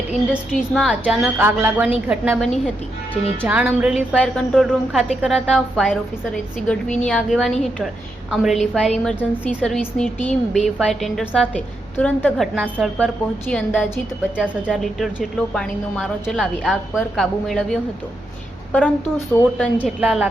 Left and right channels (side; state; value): both; normal; correlation 0.83